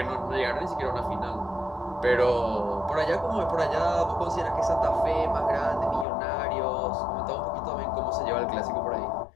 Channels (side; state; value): right; drops out; at 6.1 s